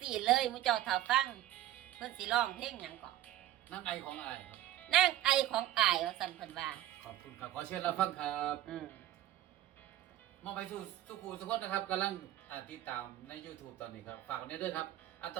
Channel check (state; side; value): quieter; left; 13.7 dB